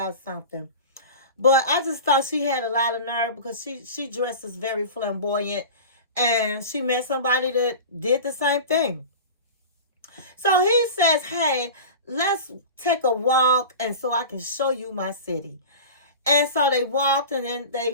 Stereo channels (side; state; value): both; inverted; correlation -0.33